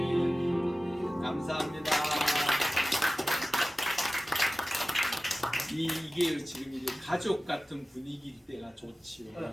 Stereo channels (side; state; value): both; normal; correlation 0.96